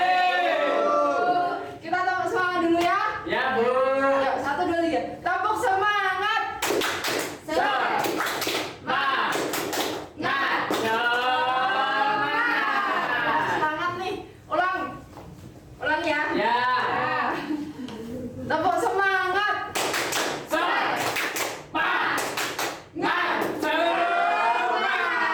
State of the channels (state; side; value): identical; both; correlation 1.00